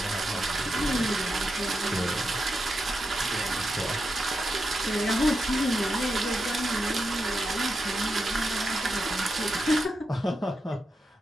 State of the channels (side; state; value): both; normal; correlation 0.86